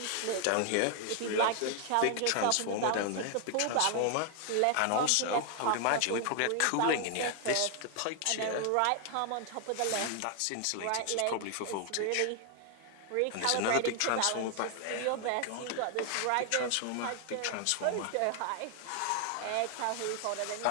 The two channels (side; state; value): both; different; correlation 0.00